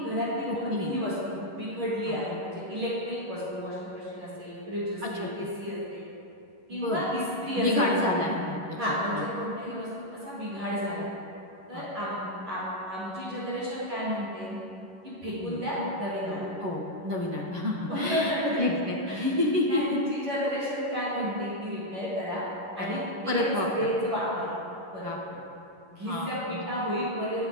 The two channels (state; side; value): late; left; 11 ms